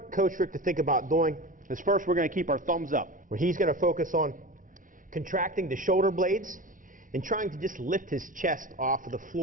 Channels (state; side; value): late; left; 0.38 ms